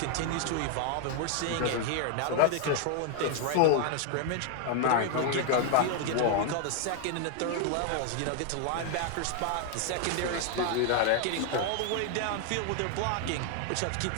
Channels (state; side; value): different; both; correlation 0.00